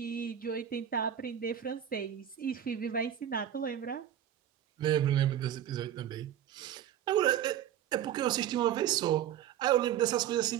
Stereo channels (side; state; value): left; quieter; 10.4 dB